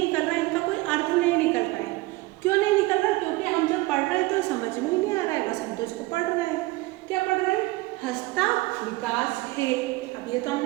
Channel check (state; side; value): quieter; left; 20.9 dB